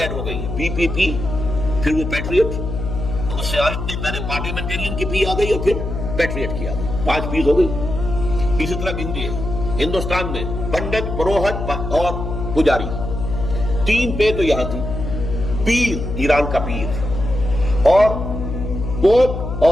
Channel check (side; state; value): left; noise; hum, 5 dB below the sound